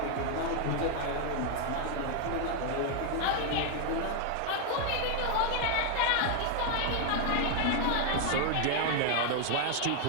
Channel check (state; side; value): different; both; correlation 0.00